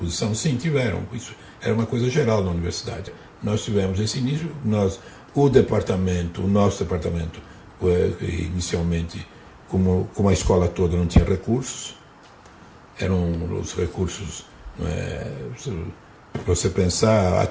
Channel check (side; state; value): both; identical; correlation 1.00